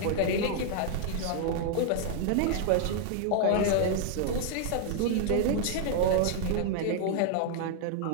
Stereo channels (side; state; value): both; different; correlation 0.00